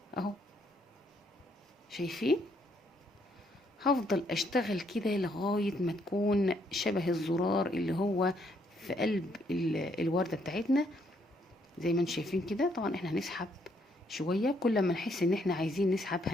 اهو. شايفين؟ هفضل اشتغل كده لغاية ما تكون شبه الزرار اللي هو في قلب الوردة بتاعتنا زي ما انتم شايفين كده. طبعا احنا هنسحب شوية، كل ما نحس ان احنا عايزين نسحب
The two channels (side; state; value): both; normal; correlation 0.71